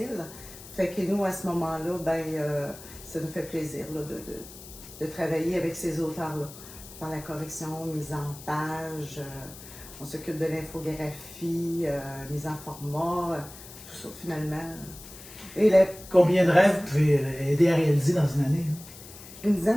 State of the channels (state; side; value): noise; left; hiss, 16 dB below the sound